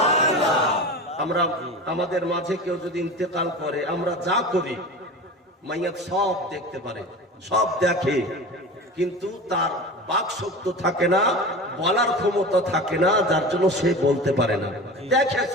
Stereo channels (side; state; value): both; normal; correlation 0.32